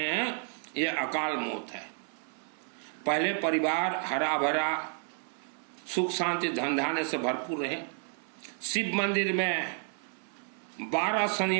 हैं, ये अकाल मौत है। पहले परिवार हरा भरा सुख शांति धन धान्य से भरपूर रहे। शिव मंदिर में 12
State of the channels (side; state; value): left; silent; 55 dB below the other